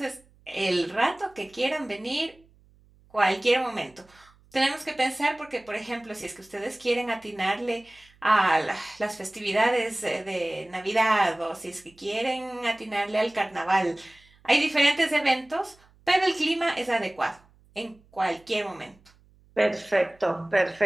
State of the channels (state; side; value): noise; right; hum, 30 dB below the sound